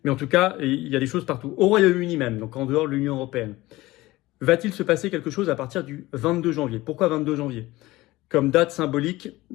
Mais en tout cas, il y a des choses partout. Au Royaume-Uni même, donc en dehors de l'Union européenne. Va-t-il se passer quelque chose à partir du 22 janvier ? Pourquoi 22 janvier ? Comme date symbolique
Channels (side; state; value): right; quieter; 18.8 dB